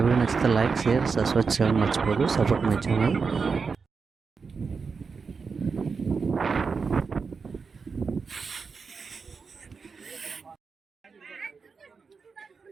వీడియో నచ్చితే లైక్, షేర్, సబ్స్క్రైబ్ చేయడం మర్చిపోదు. Support my channel.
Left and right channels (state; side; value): quieter; left; 5.1 dB